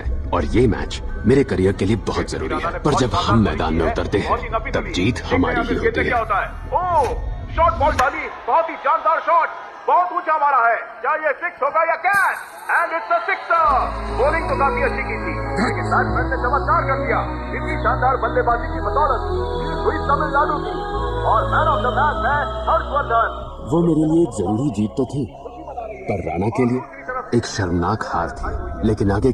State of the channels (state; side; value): identical; both; correlation 1.00